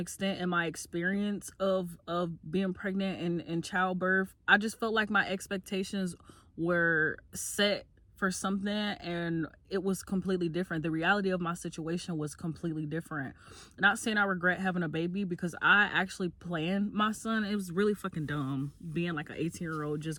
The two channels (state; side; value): identical; both; correlation 1.00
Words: in my experience of being pregnant and childbirth. I just felt like my expectations were set for something and it was completely different. The reality of my situation was completely different. Not saying I regret having a baby, because I actually planned my son. It was really fucking dumb being like an 18-year-old